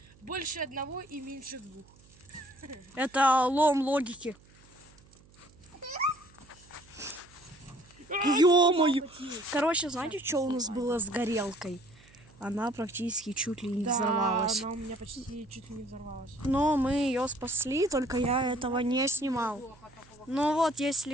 больше одного и меньше двух. Это лом логики. Ё-моё! Короче, знаете, что у нас было с горелкой? Она практически чуть ли не взорвалась. Она у меня почти чуть ли не взорвалась. Но мы ее спасли, только я этого не снимал. Ну вот, есть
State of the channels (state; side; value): noise; right; hum, 26 dB below the sound